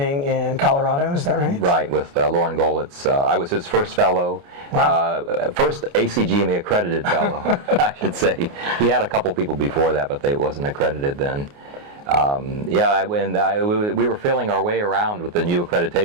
in Colorado, is that right? Right, with Lauren Golitz. I was his first fellow, wow. First ACGME accredited fellow, I should say. He had a couple people before that, but they wasn't accredited then. We were feeling our way around with the new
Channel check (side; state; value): left; late; 29 ms